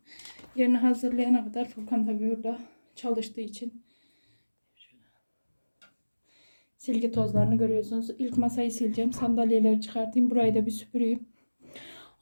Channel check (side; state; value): both; inverted; correlation -1.00